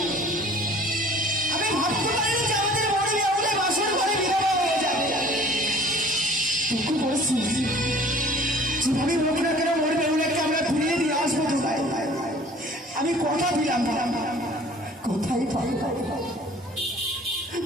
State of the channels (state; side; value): normal; both; correlation 0.50